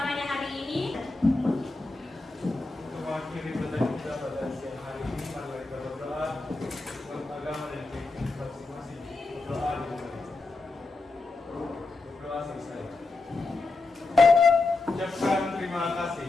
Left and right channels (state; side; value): quieter; right; 3.4 dB